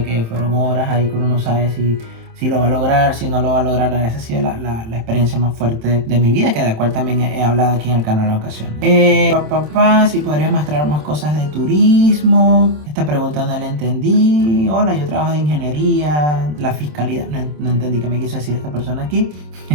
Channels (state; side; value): late; left; 27 ms